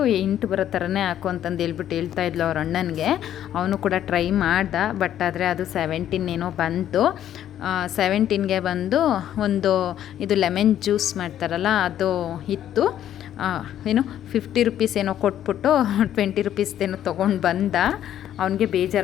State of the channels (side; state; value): right; quieter; 11.0 dB